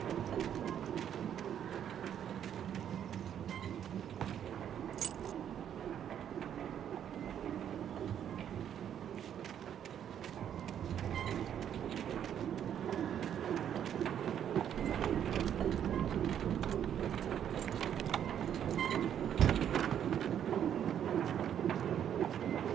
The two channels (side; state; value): left; quieter; 9.5 dB